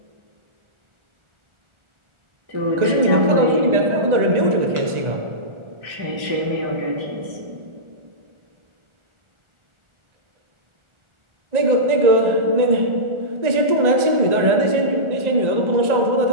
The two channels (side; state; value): left; late; 1.4 ms